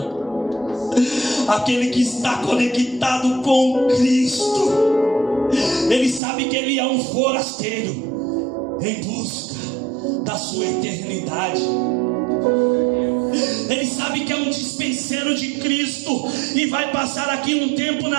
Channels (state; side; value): drops out; left; at 6.2 s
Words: aquele que está conectado com Cristo, ele sabe que ele é um forasteiro em busca da sua eternidade. Ele sabe que é um dispenseiro de Cristo e vai passar aqui um tempo